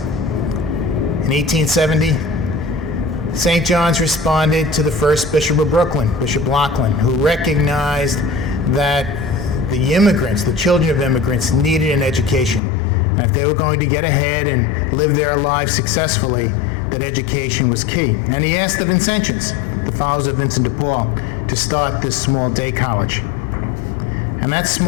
In 1870, St. John's responded to the first Bishop of Brooklyn, Bishop Laughlin, who recognized that the immigrants, the children of immigrants, needed an education. And if they were going to get ahead and live their lives successfully, that education was key. And he asked the Vincentians, the followers of Vincent de Paul, to start this small day college. And that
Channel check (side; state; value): right; drops out; at 12.6 s